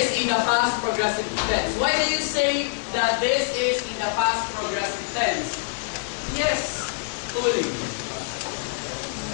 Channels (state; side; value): silent; right; digital silence